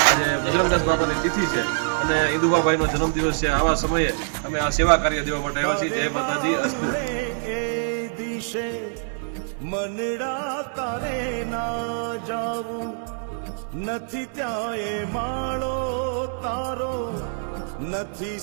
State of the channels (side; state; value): left; silent; digital silence